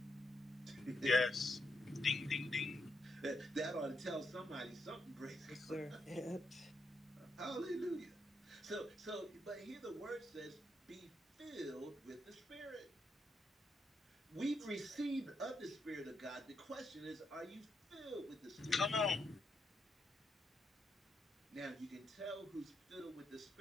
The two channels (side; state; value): both; normal; correlation 0.80